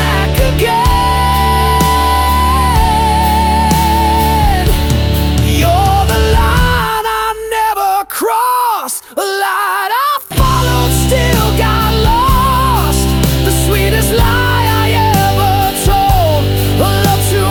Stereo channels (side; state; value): both; identical; correlation 1.00